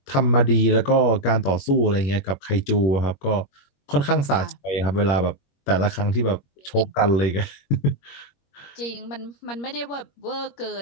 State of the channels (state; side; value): late; right; 21 ms